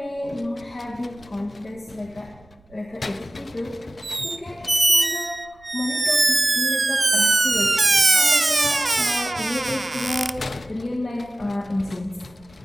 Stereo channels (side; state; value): right; noise; rumble, 29 dB below the sound